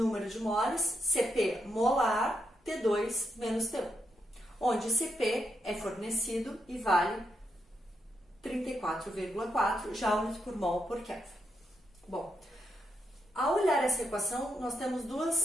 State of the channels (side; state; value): both; normal; correlation 0.82